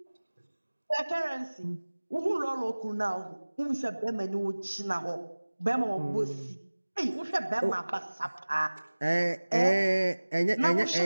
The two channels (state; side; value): inverted; both; correlation -1.00